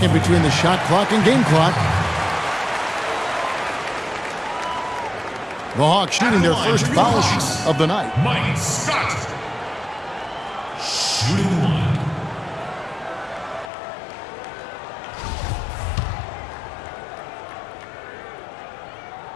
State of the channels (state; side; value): drops out; right; at 13.7 s